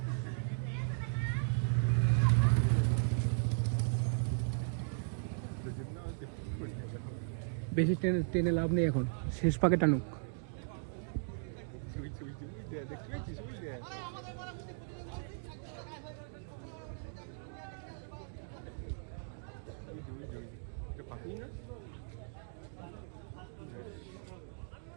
বেশি টেনে লাভ নেই এখন, শেষ পাকে টানুক।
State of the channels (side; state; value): left; silent; digital silence